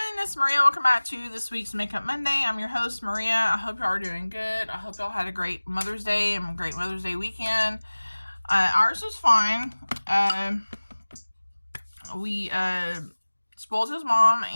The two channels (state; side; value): inverted; both; correlation -1.00